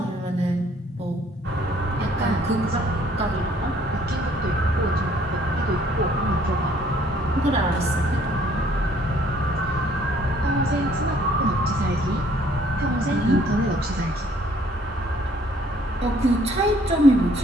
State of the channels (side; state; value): both; normal; correlation 0.61